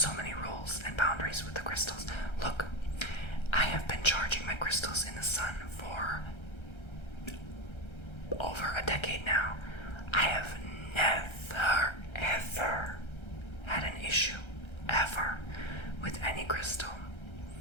many rules and boundaries with the crystals. Look, I have been charging my crystals in the sun for over a decade now. I have never, ever had an issue, ever, with any crystal.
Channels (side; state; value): right; late; 1.3 ms